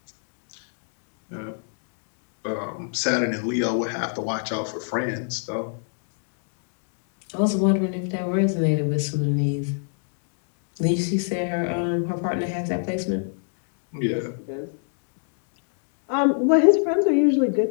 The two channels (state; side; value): silent; right; digital silence